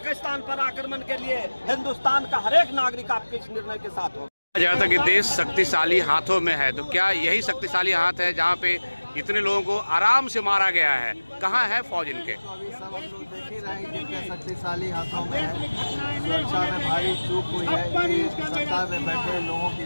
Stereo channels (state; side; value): inverted; both; correlation -1.00